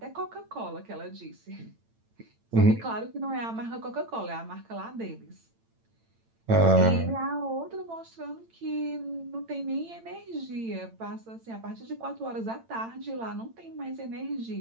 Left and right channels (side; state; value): left; late; 8.9 ms